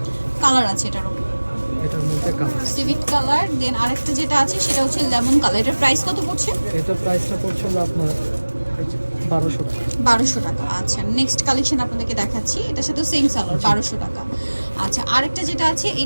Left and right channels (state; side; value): inverted; both; correlation -1.00